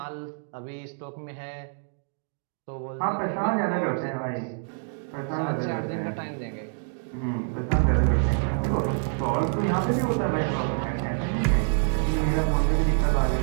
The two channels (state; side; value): silent; left; digital silence